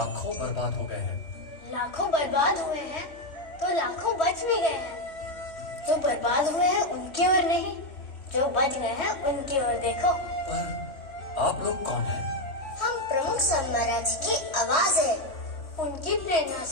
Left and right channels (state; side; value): late; right; 3.1 ms